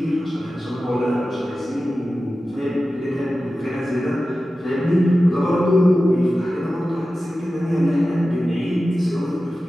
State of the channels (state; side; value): normal; both; correlation 0.94